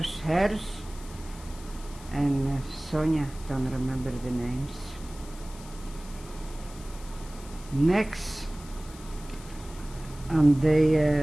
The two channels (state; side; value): noise; left; hiss, 19 dB below the sound